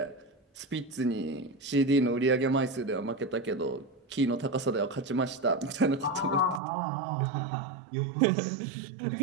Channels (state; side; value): drops out; left; at 6.6 s